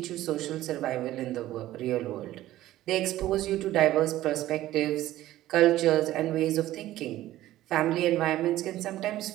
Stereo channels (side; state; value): left; quieter; 14.8 dB